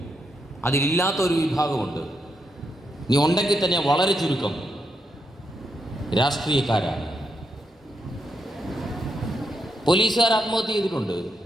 അതിലില്ലാത്തൊരു വിഭാഗമുണ്ട്. നീ ഉണ്ടെങ്കിൽ തന്നെ വളരെ ചുരുക്കം രാഷ്ട്രീയക്കാരാണ്. പോലീസുകാർ ആത്മഹത്യ ചെയ്തിട്ടുണ്ട്.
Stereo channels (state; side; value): normal; both; correlation 0.81